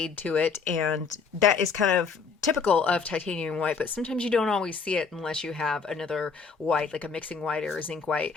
to it. And that is kind of typical of titanium white, but sometimes you don't always see it unless you have another white, like a mixing white or a zinc white,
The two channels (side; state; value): right; quieter; 5.4 dB